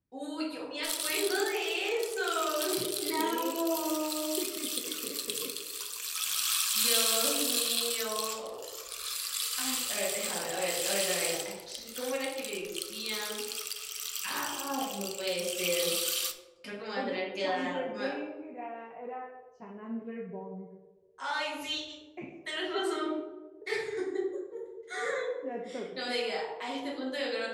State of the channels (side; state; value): both; identical; correlation 1.00